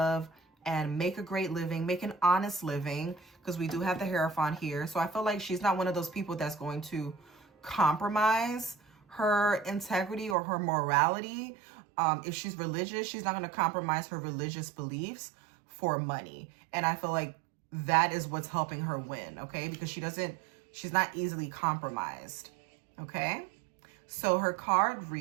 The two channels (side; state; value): left; drops out; at 10.4 s